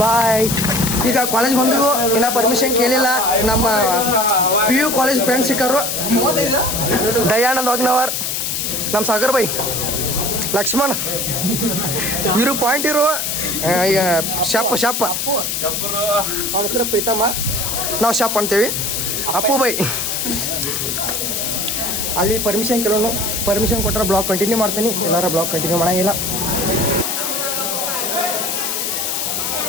ಬಾಯ್. ಈಗ ಕಾಲೇಜ್ ಬಂದು ಇನ್ನೂ ಪರ್ಮಿಷನ್ ಕೇಳಿಲ್ಲ. ನಮ್ಮ PU ಕಾಲೇಜ್ ಫ್ರೆಂಡ್ಸ್ ಸಿಕ್ಕರು. ದಯಾನಂದ್ ವಾಗ್ನವರ್, ನಮ್ಮ ಸಾಗರ್ ಬೈ, ಲಕ್ಷ್ಮಣ್, ಇರು ಪಾಯಿಂಟ್ ಇರು, ಶಪ್ ಅವನ ಹೆಸರು ಪ್ರೀತಮ್ಮ, ನಾವು ಶಪ್ ಅಂತೀವಿ. ಅಪ್ಪು ಬೈ. ಅಲ್ಲಿ ಪರ್ಮಿಷನ್ ಕೇಳೋನು. ಪರ್ಮಿಷನ್ ಕೊಟ್ಟರೆ ಬ್ಲಾಗ್ ಕಂಟಿನ್ಯೂ ಮಾಡ್ತೀನಿ, ಎಲ್ಲಾರ ಬ್ಲಾಗ್ ಕಂಟಿನ್ಯೂ ಮಾಡೋಂಗಿಲ್ಲ.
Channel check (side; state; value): left; noise; hiss, 1 dB below the sound